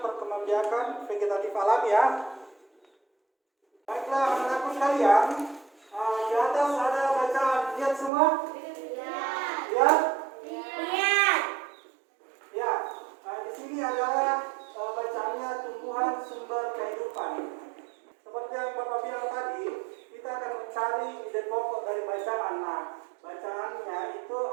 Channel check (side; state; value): left; drops out; at 8.1 s